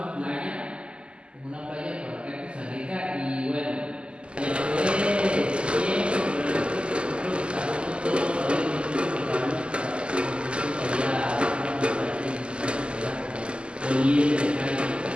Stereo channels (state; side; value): late; left; 0.052 ms